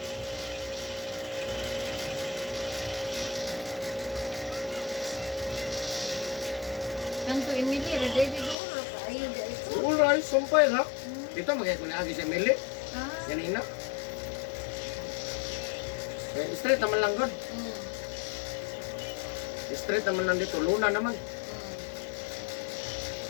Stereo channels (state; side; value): drops out; right; at 8.6 s